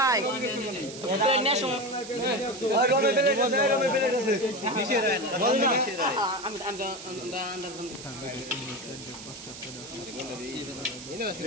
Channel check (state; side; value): noise; right; hiss, 13 dB below the sound